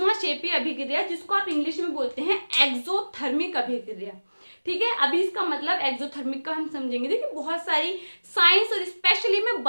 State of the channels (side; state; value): both; inverted; correlation -1.00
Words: अभिक्रिया, जिसको आप इंग्लिश में बोलते हैं एक्सोथर्मिक अभिक्रिया, ठीक है। अभी इसका मतलब एक्सोथर्मिक का हम समझेंगे। देखिए बहुत सारी साइंस और स्पेशली मैं